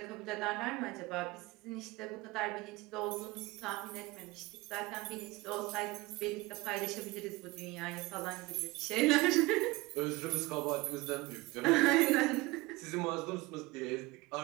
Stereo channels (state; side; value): quieter; left; 22.1 dB